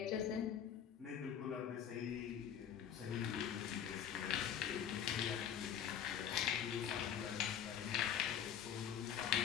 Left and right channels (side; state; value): right; quieter; 8.9 dB